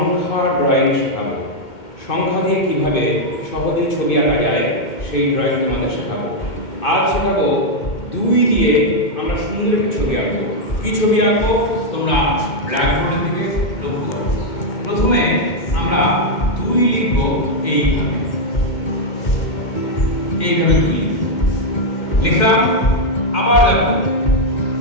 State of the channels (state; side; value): late; right; 2.2 ms